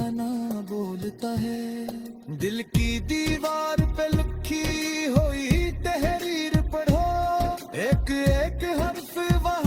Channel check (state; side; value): identical; both; correlation 1.00